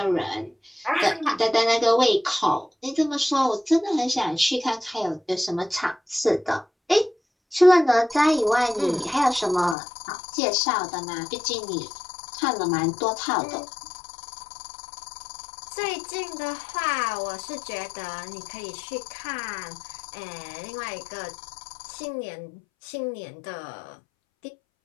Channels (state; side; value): drops out; right; at 9.8 s